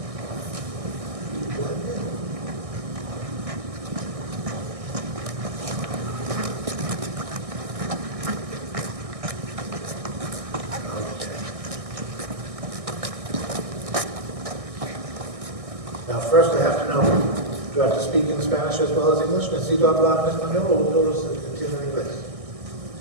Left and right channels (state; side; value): late; left; 1.6 ms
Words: Now, first I have to know, do I have to speak in Spanish as well as English? ¿Necesito hablar en español o todos entienden inglés?